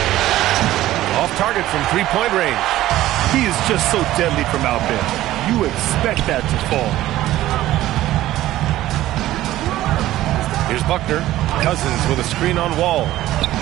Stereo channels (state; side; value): quieter; left; 14.9 dB